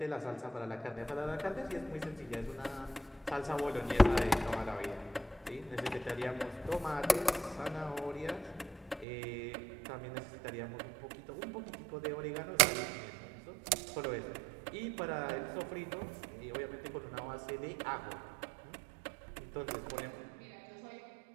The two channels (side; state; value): left; drops out; at 9.1 s